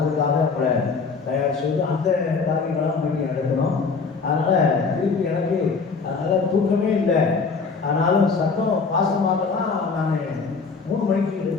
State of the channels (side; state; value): right; quieter; 4.8 dB